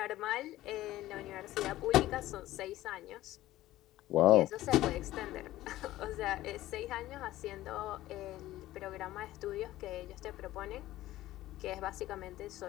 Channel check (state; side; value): quieter; right; 15.5 dB